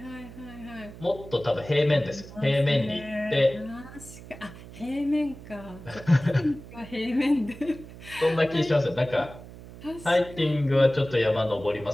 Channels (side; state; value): right; noise; hum, 16 dB below the sound